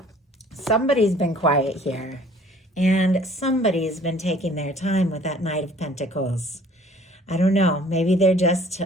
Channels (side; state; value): both; normal; correlation 0.54